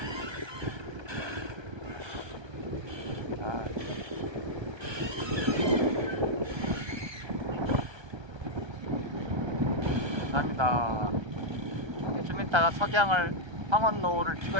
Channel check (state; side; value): late; left; 1.3 ms